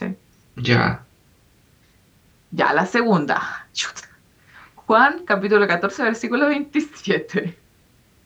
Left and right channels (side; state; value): both; identical; correlation 1.00